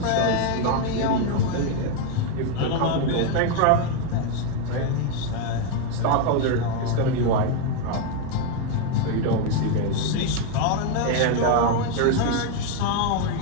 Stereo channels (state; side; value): different; both; correlation 0.01